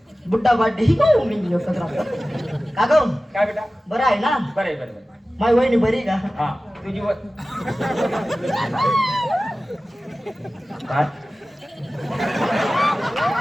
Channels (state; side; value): normal; both; correlation 0.96